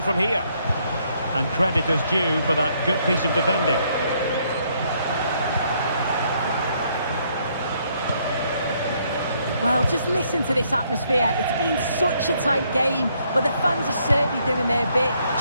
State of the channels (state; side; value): inverted; both; correlation -0.70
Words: here? And credit is due for that good piece of defending. Well, just listen to this atmosphere. It's been such a tight game, but the fans are certainly doing their bit,